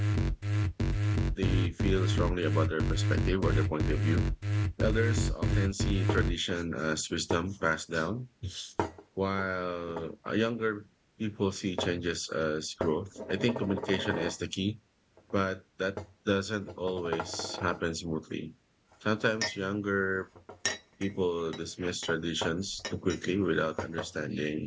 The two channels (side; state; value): both; identical; correlation 1.00